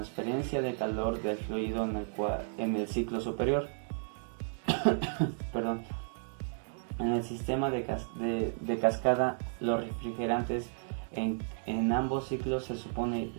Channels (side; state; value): left; silent; digital silence